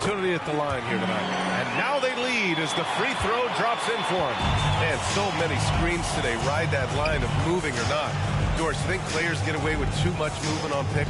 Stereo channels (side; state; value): both; identical; correlation 1.00